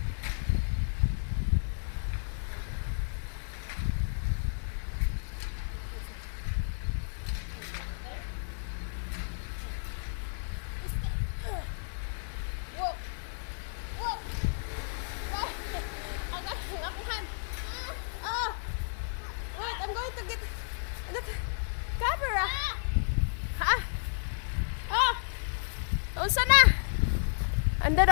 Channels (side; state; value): right; silent; digital silence